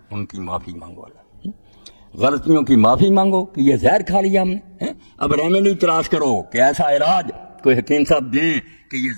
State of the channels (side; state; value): both; inverted; correlation -1.00